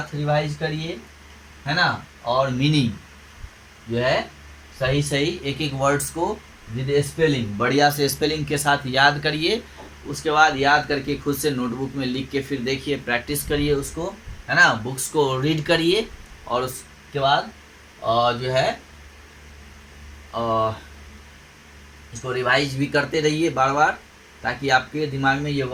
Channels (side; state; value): both; identical; correlation 1.00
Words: रिवाइज करिए, है ना, और मीनिंग जो है सही सही एक एक वर्ड्स को विद स्पेलिंग बढ़िया से स्पेलिंग के साथ याद करिए। उसके बाद याद करके खुद से नोटबुक में लिख के फिर देखिए, प्रैक्टिस करिए उसको, है ना, बुक्स को रीड करिए। और उसके बाद जो है इसको रिवाइज भी करते रहिए बार बार, ताकि आपके दिमाग में ये